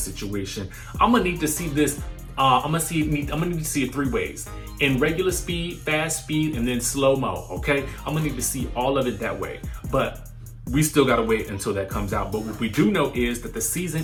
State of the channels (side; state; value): both; identical; correlation 1.00